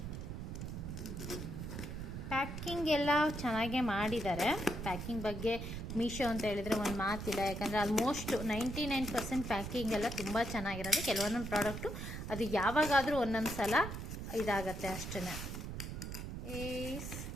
ಪ್ಯಾಕಿಂಗ್ ಎಲ್ಲ ಚೆನ್ನಾಗೇ ಮಾಡಿದ್ದಾರೆ. ಪ್ಯಾಕಿಂಗ್ ಬಗ್ಗೆ ಮೀಶೋ ಅಂತ ಹೇಳಿದರೆ ಒಂದು ಮಾತಿಲ್ಲ. ಯಾಕಂದರೆ ಆಲ್ಮೋಸ್ಟ್ 99% ಪ್ಯಾಕಿಂಗ್ ಎಲ್ಲ ತುಂಬ ಚೆನ್ನಾಗಿರೋದು. ಕೆಲವೊಂದೊಂದು ಪ್ರಾಡಕ್ಟು ಅದು ಯಾವಾಗಾದರೂ ಒಂದೊಂದು ಸಲ ಇದಾಗತ್ತೆ ಅಷ್ಟೇ.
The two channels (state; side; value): noise; right; rumble, 6 dB below the sound